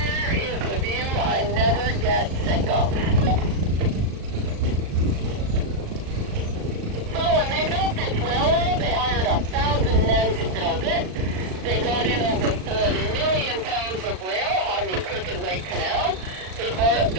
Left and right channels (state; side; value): late; left; 38 ms